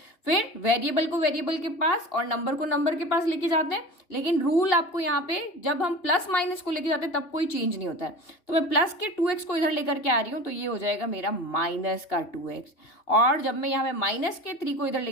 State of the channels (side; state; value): right; late; 2.8 ms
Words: फिर वेरिएबल को वेरिएबल के पास और नंबर को नंबर के पास लेके जाते हैं, लेकिन रूल आपको यहाँ पे जब हम प्लस माइनस को लेके जाते हैं तब कोई चेंज नहीं होता है। तो मैं प्लस के 2x को इधर लेकर के आ रही हूँ तो ये हो जाएगा मेरा माइनस का 2x, और जब मैं यहाँ पे माइनस के 3 को इधर